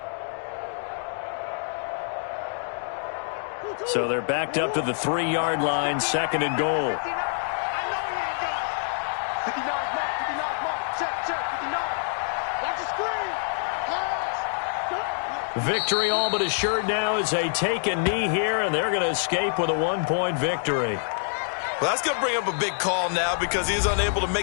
So they're backed up to the 3-yard line, second and goal. 59, Mark, check, 59. Watch the screen. Victory all but assured now as they take a knee here, and they're going to escape with a 1-point victory. Well, that's going to bring up a big call now because he's unable to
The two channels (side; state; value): right; silent; digital silence